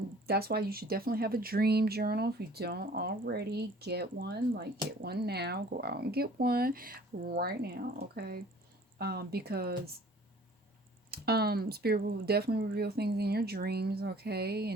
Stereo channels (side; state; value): both; normal; correlation 0.51